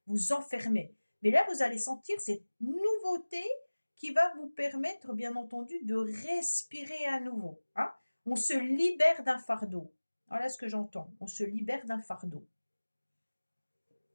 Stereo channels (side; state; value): both; inverted; correlation -1.00